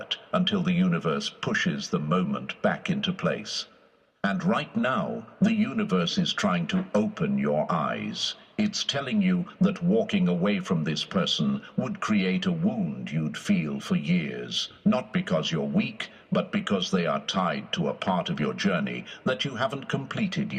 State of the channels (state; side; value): identical; both; correlation 1.00